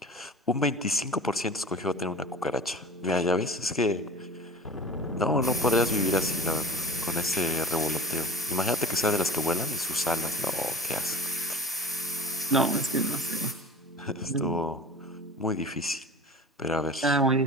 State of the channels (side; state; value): both; normal; correlation 0.38